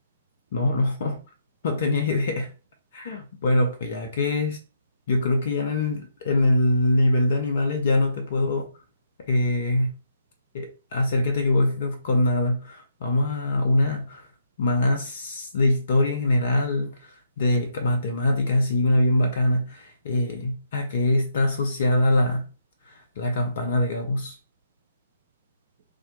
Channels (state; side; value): inverted; both; correlation -0.79